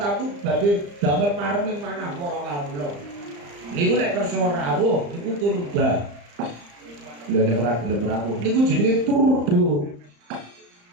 badhe damel mareming manah para kawula niku nek kersa rawuh niku turba lha nek ora gelem rawuh niku jenenge turbo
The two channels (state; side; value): late; left; 35 ms